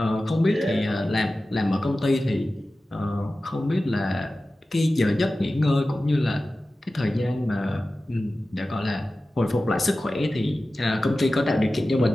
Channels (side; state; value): both; normal; correlation 0.95